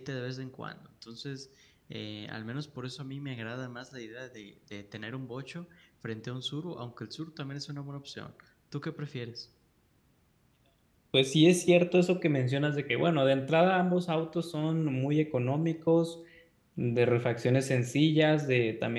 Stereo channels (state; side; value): identical; both; correlation 1.00